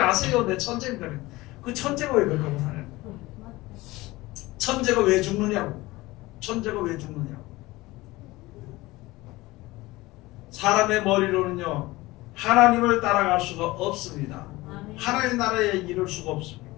내 천재입니다. 그 천재가 왜 그렇게 하고 사냐? 천재가 왜 죽느냐고. 천재가 왜 죽느냐고. 사람의 머리로는요, 하나님을 따라갈 수가 없습니다. 하나님의 나라에 이를 수가 없습니다.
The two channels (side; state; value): right; quieter; 20.0 dB